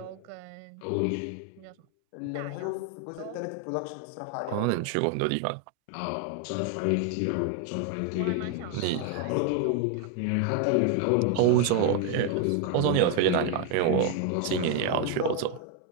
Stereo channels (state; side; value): different; both; correlation 0.01